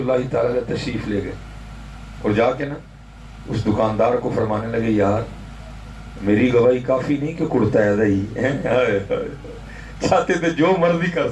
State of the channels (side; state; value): both; identical; correlation 1.00